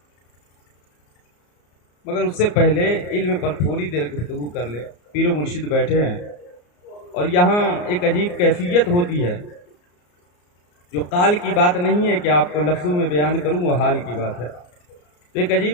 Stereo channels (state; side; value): late; right; 34 ms